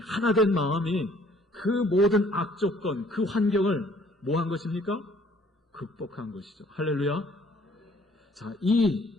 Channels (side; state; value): both; normal; correlation 0.59